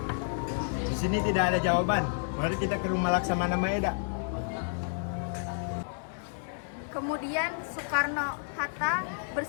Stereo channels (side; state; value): right; silent; digital silence